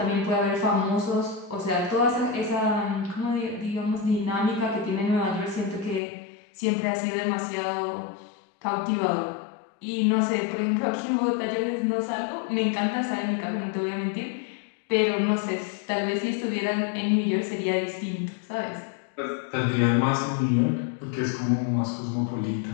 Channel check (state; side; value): drops out; right; at 6.0 s